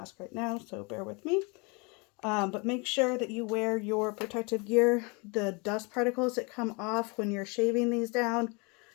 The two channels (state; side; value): quieter; right; 30.6 dB